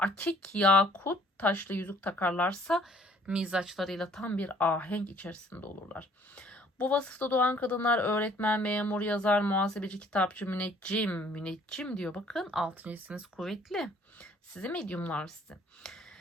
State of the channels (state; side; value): normal; both; correlation 0.58